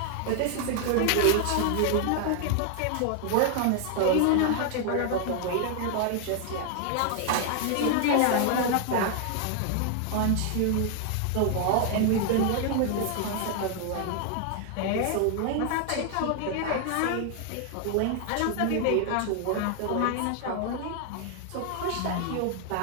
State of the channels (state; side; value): different; both; correlation 0.00